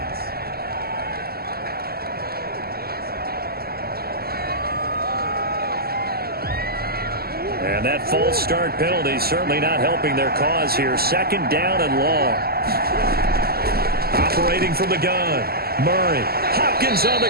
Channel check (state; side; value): late; left; 0.45 ms